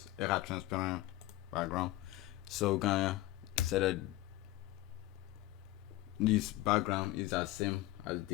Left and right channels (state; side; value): quieter; right; 16.9 dB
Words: it has transparent background. So we're gonna set that this background is the same as